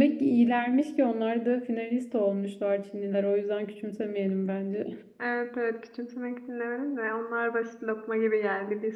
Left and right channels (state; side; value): identical; both; correlation 1.00